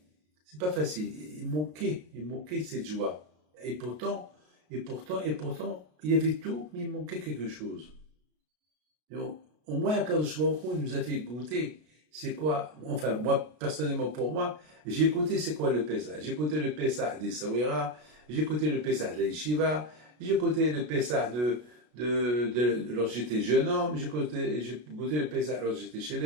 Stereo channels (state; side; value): late; left; 33 ms